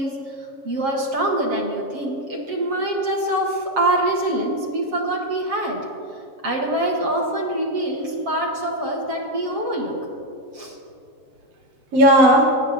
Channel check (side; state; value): left; late; 7.4 ms